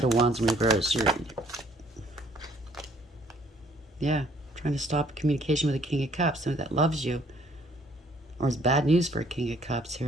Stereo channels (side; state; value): both; normal; correlation 0.62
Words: of Wands in reverse. Yeah. Trying to stop communication with a King of Cups. Somebody that loves you. Or it's bad news for a King of Cups